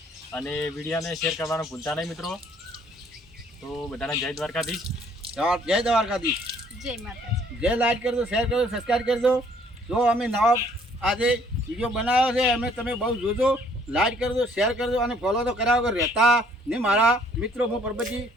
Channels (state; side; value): normal; both; correlation 0.61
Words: અને વિડીયોને શેર કરવાનું ભૂલતા નહીં મિત્રો તો બધાને જય દ્વારકાધીશ જય દ્વારકાધીશ જય માતાજી જે લાઈક કરજો શેર કરજો સબસ્ક્રાઈબ કરજો જો અમે નવા આજે વિડીયો બનાવ્યો છે અમે તમે બહુ જોજો લાઈક કરજો શેર કરજો અને ફોલો તો કર્યા વગર રહેતા ને મારા મિત્રો હું પરબતજી